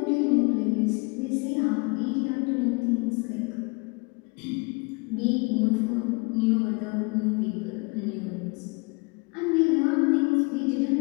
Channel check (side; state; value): right; quieter; 30.0 dB